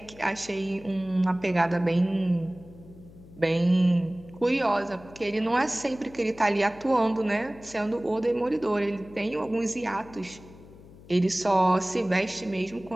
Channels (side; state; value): left; noise; hum, 20 dB below the sound